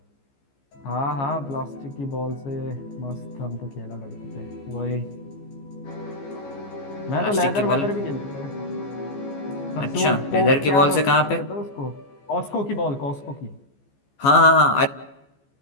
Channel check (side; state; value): right; late; 14 ms